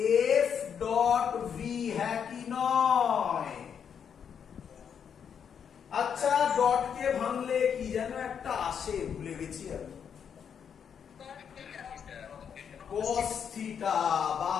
F ডট V, হ্যাঁ কি নয়? আচ্ছা ডট কে ভাঙলে কি যেন একটা আসে, ভুলে গেছি আমি, cos থিটা, বা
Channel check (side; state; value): right; quieter; 7.6 dB